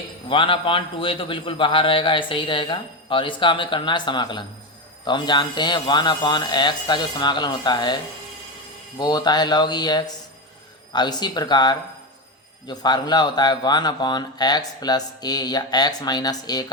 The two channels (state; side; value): normal; both; correlation 0.14